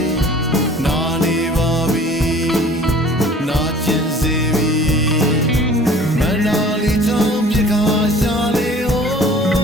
းနာနေပါပြီနာကျင်စေပြီမနာလီချောင်းပြခါရှာလေဟို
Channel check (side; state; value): both; normal; correlation 0.49